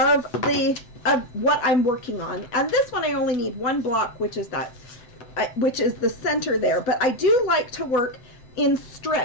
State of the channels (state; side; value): late; right; 8.0 ms